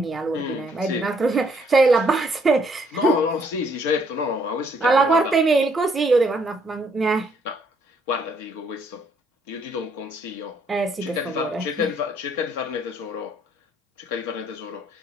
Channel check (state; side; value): normal; both; correlation 0.68